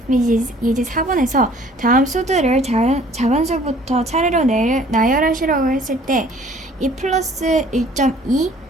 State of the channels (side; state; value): both; normal; correlation 0.54